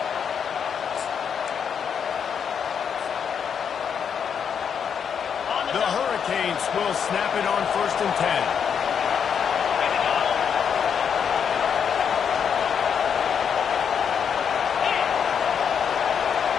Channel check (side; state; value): right; quieter; 7.4 dB